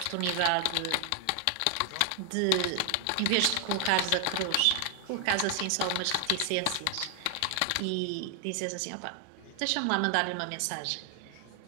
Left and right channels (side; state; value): both; different; correlation 0.00